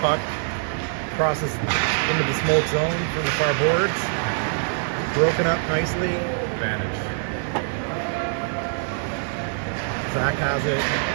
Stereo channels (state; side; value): silent; left; digital silence